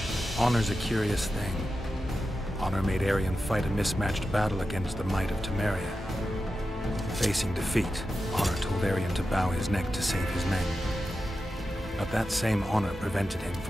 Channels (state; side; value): normal; both; correlation 0.91